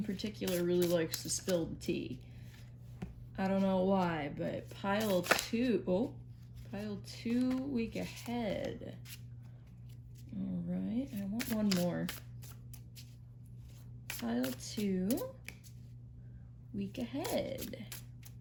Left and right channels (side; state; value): both; identical; correlation 1.00